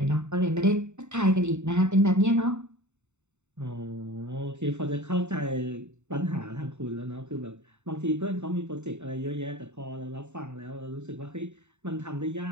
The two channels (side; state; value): left; late; 0.83 ms